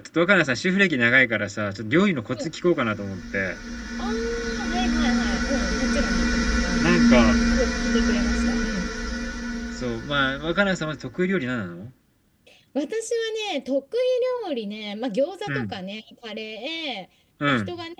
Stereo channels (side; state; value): both; identical; correlation 1.00